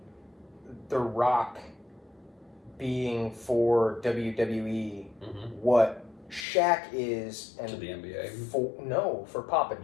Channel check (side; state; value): right; drops out; at 6.5 s